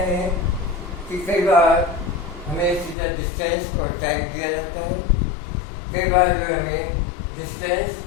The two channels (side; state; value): right; drops out; at 3.0 s